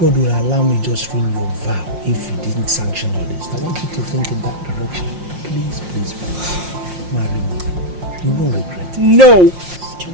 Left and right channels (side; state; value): left; late; 5.6 ms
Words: will allow me just ruin your vow if He didn't sanction all this? I want you to think in that direction. Please, please, please. Marry me. You won't regret it. No.